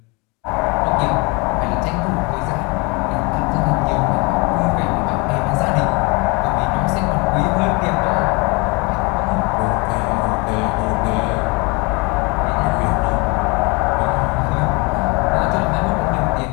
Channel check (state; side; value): quieter; right; 28.3 dB